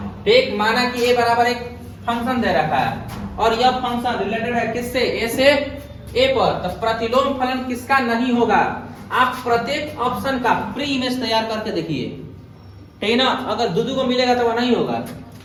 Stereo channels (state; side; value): identical; both; correlation 1.00